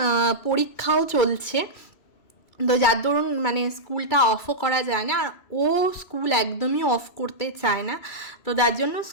পরীক্ষাও চলছে। তো যার দরুন মানে স্কুলটা অফও করা যায় না, আর ও স্কুল একদমই অফ করতে চায় না। তো যার জন্য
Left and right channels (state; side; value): late; right; 2.2 ms